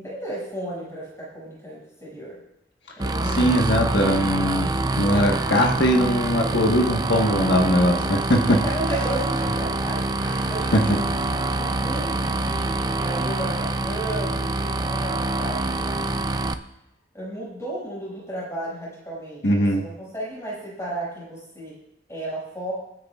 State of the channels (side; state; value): both; normal; correlation 0.54